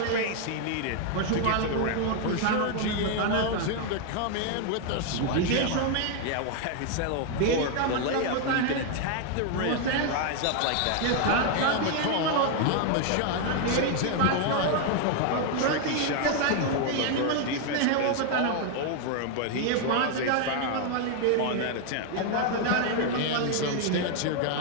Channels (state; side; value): different; both; correlation 0.00